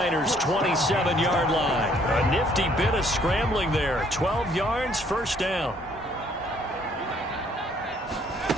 27-yard line. A nifty bit of scrambling there. 12 yards, 1st down.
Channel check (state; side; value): normal; both; correlation 0.64